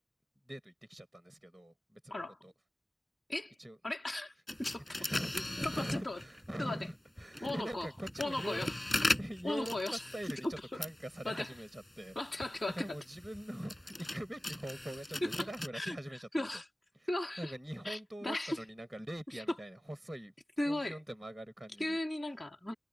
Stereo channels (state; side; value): normal; both; correlation 0.97